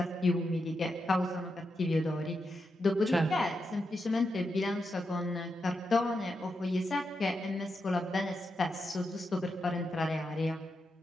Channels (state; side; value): normal; both; correlation 0.86